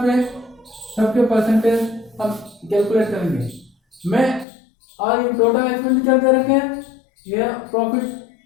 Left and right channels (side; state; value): right; drops out; at 4.5 s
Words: पे सबके परसेंटेज हम कैलकुलेट करेंगे। मैं और ये टोटल एक्सपेंडिचर दे रखे हैं, ये प्रॉफिट